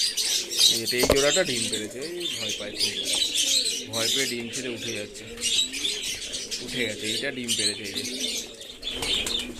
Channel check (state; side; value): identical; both; correlation 1.00